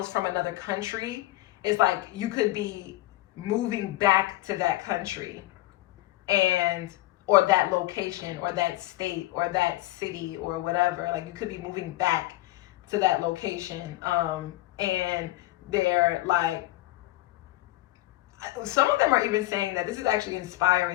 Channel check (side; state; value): right; quieter; 17.5 dB